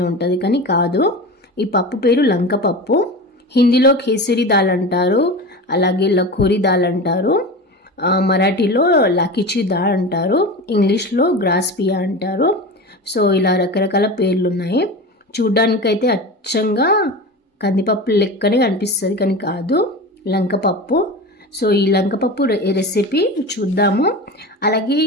ఉంటుంది, కానీ కాదు. ఈ పప్పు పేరు లంకపప్పు. హిందీలో కేసరి దాల్ అంటారు, అలాగే లఖోరీ దాల్ అంటారు, మరాఠీలో లాకిచి దాల్ అంటారు, ఇంగ్లీష్లో గ్రాస్ పియా అంటారు. సో ఇలా రకరకాల పేర్లు ఉన్నాయి. చూడ్డానికైతే అచ్చంగా కందిపప్పు లెక్కనే కనిపిస్తుంది, కానీ కాదు, లంకపప్పు. సో ఈ లంకపప్పు రెసిపీ చూద్దాము. అలాగే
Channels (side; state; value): both; normal; correlation 0.29